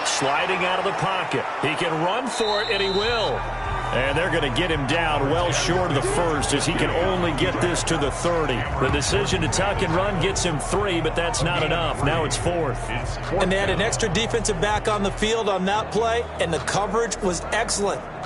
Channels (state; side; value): identical; both; correlation 1.00